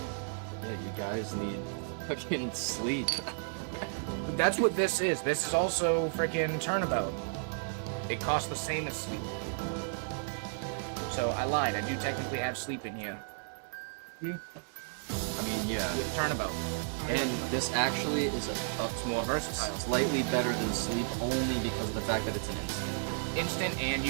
Yeah, you guys need fucking sleep. That's what this is. This is also freaking turnabout. It costs the same as sleep. So I lied. I do technically have sleep in here I mean, yeah. with turnabout. And this actually is It's more versatile. slightly better than sleep only because of the fact that it's an instant. Instant, and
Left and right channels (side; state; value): left; silent; digital silence